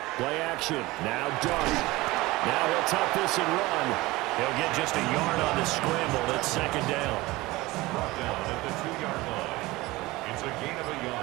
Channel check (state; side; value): quieter; left; 20.2 dB